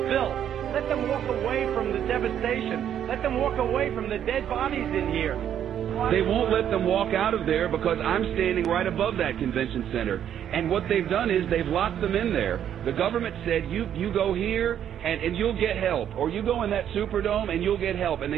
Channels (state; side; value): quieter; left; 9.8 dB